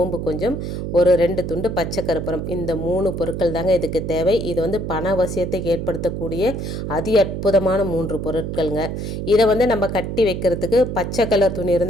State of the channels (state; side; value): noise; right; hum, 4 dB below the sound